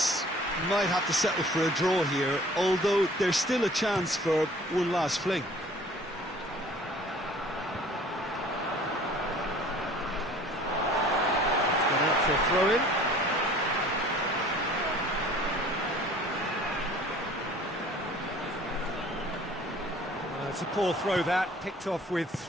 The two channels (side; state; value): both; normal; correlation 0.50